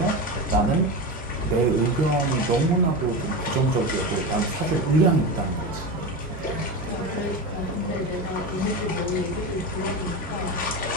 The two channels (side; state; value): both; normal; correlation 0.22